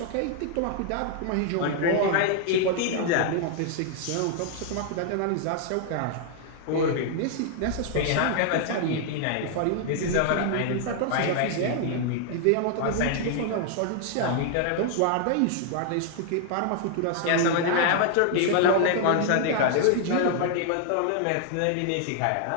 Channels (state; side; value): different; both; correlation 0.00